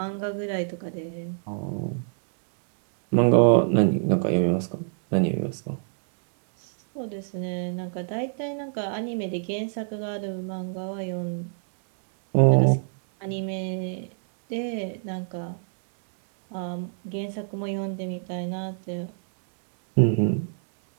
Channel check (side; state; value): left; silent; digital silence